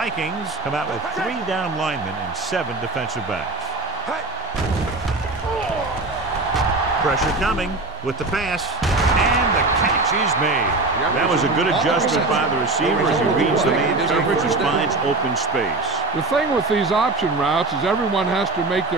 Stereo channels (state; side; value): quieter; left; 3.1 dB